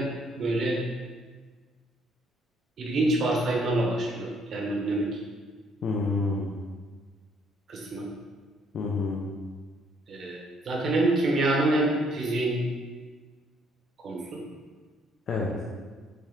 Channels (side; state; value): both; normal; correlation 0.67